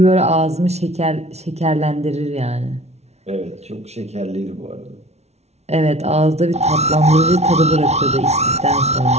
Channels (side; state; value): left; late; 0.31 ms